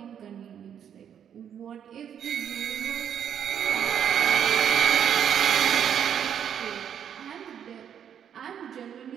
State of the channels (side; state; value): left; quieter; 8.8 dB